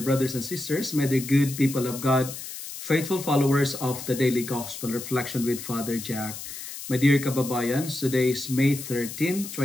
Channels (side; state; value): left; noise; hiss, 10 dB below the sound